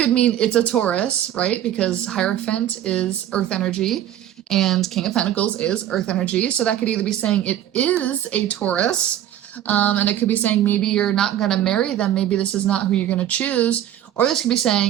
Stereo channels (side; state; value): left; quieter; 11.6 dB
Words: mean it's a Taurus, right? Because Hierophant is earth energy and King of Pentacles is earth energy. So that could either be saying it is a Taurus, and it could be saying maybe you're not going to marry them. Maybe this is not who you're going to choose. Or this could be